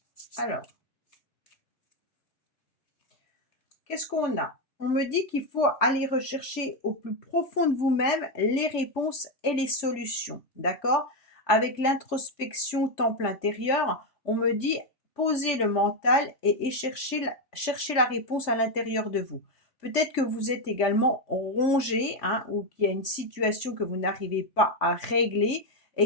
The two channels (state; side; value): late; right; 3.4 ms